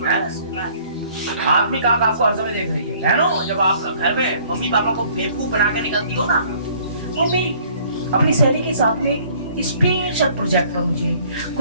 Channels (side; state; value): both; inverted; correlation -0.57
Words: आदमी का आपको हर समय देख रही है। बहनों, जब आप घर में मम्मी पापा को बेवकूफ बना के निकलती हो ना, मम्मी अपनी सहेली के साथ में स्पेशल प्रोजेक्ट पर मुझे